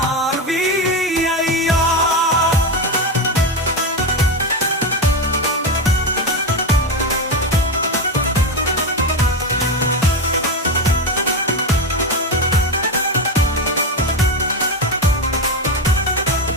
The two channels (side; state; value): both; normal; correlation 0.14